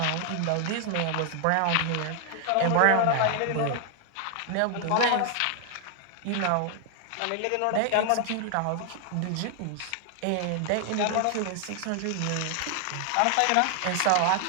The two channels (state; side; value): different; both; correlation 0.00